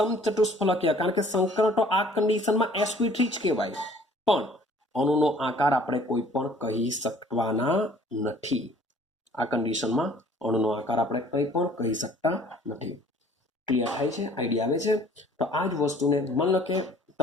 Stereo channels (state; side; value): normal; both; correlation 0.55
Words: કારણ કે સંકરણ તો આ કન્ડિશનમાં sp3 જ કહેવાય. પણ અણુનો આકાર આપણે કોઈ પણ કહી શકવાના નથી. આ કન્ડિશનમાં અણુનો આકાર આપણે કંઈ પણ કહી શકતા નથી. ક્લિયર થાય છે? આઈડિયા આવે છે? તો આ જ વસ્તુને માન લો કે